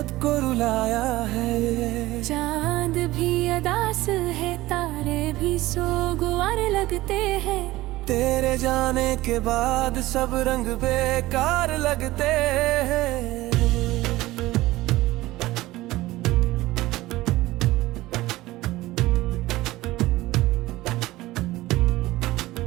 को रुलाया है। चांद भी अदास है, तारे भी सोगवार लगते हैं, तेरे जाने के बाद सब रंग बेकार लगते हैं।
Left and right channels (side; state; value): left; quieter; 17.8 dB